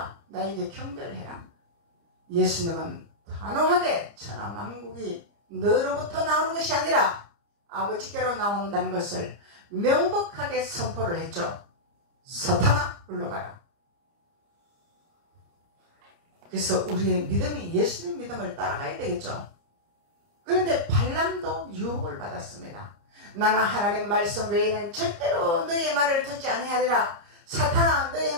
나에게 경배해라. 예수님은 단호하게 천하만국이 너로부터 나오는 것이 아니라 아버지께로 나온다는 것을 명백하게 선포를 했죠. 사탄아 물러가라. 그래서 우리의 믿음이 예수님 믿음을 따라가야 되겠죠. 그런데 발람도 유혹을 받았습니다. 나는 하나님 말씀 외에는 절대로 너의 말을 듣지 아니하리라. 사탄아 너의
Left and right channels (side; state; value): left; late; 30 ms